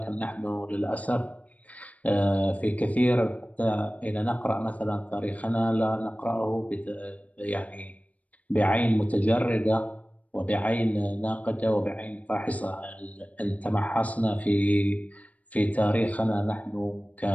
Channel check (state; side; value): late; right; 0.070 ms